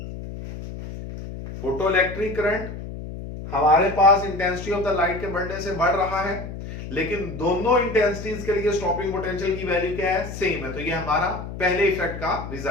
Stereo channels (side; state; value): left; noise; hum, 9 dB below the sound